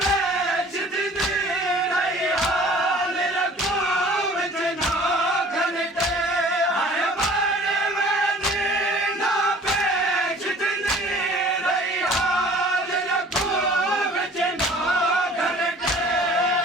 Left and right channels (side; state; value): both; normal; correlation 0.49